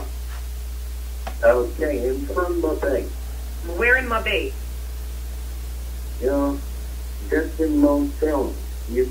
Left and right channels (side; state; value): both; identical; correlation 1.00